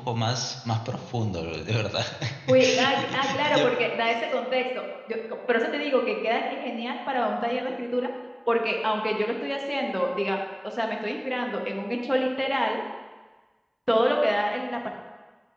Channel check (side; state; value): both; identical; correlation 1.00